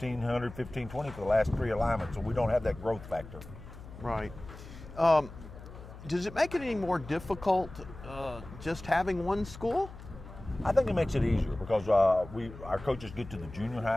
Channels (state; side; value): noise; left; hum, 15 dB below the sound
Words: 1520 for the last 3 alignments, so we don't have that growth factor. Right. Does it make it any more difficult just having one school? I think it makes it easier because our coaches get to the junior